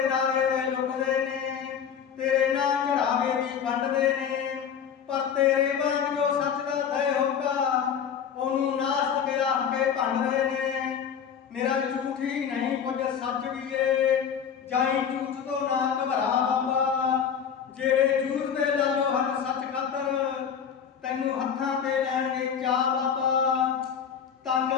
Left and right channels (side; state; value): right; quieter; 7.7 dB